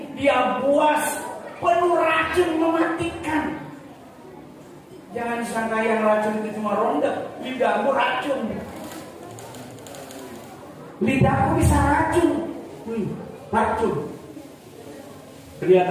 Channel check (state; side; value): identical; both; correlation 1.00